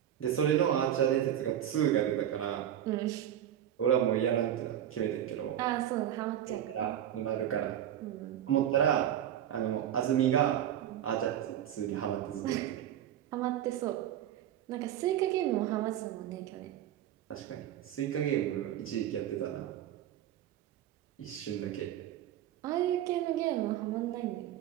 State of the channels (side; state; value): left; quieter; 11.0 dB